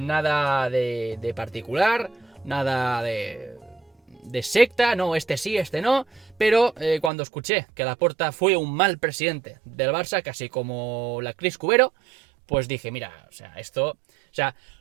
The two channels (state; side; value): drops out; left; at 7.1 s